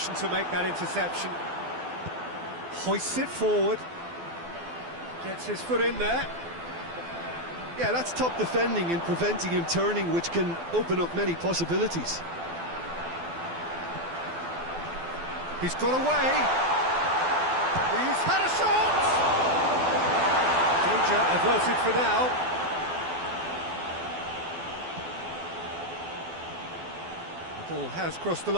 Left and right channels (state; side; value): late; left; 12 ms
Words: to make that interception. Hoists it forward. Gets his foot in there. Yeah, that's top defending and preventing him turning, which can open up many possibilities. He's got away. He's had a shot! Danger averted for now. The ball has crossed the